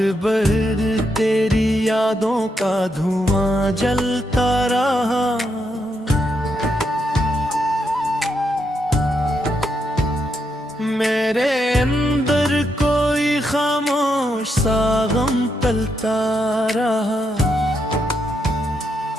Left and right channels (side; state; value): both; normal; correlation 0.81